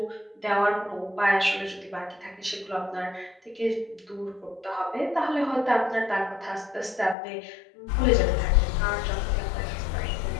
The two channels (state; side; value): drops out; right; at 7.2 s